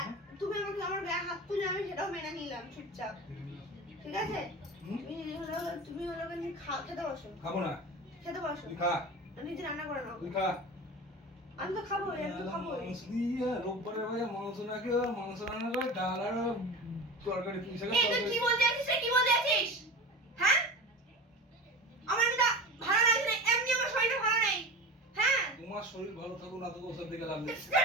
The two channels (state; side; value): normal; both; correlation 0.31